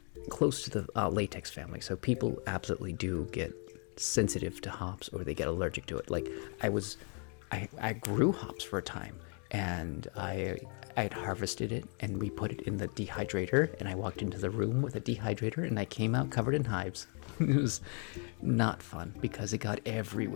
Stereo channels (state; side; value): quieter; right; 39.5 dB